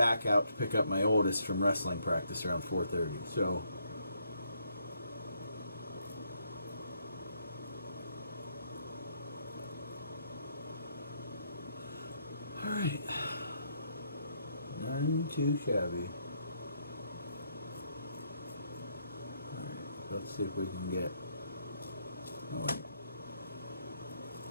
out to pick up my oldest from wrestling practice around 4:30. So alright, None too shabby. Alright, let's see if we can get... Oh, wait.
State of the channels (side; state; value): both; inverted; correlation -0.73